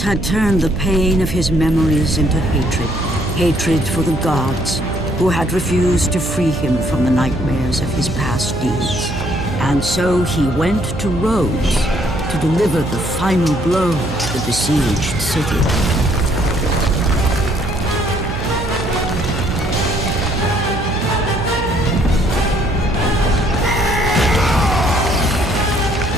had turned the pain of his memories into hatred. Hatred for the gods, who had refused to free him from the nightmares of his past deeds. And so he went to Rhodes to deliver the final blow to the besieged city.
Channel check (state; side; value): noise; right; hum, 7 dB below the sound